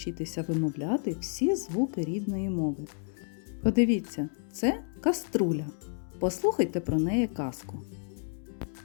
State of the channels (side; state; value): right; silent; 57 dB below the other